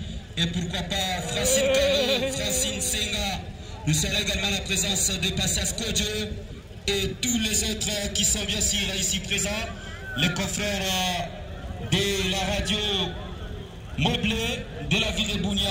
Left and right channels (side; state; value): both; identical; correlation 1.00